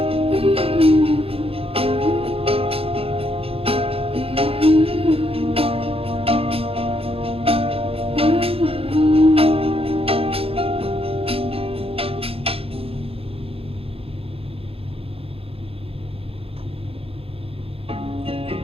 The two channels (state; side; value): late; left; 0.27 ms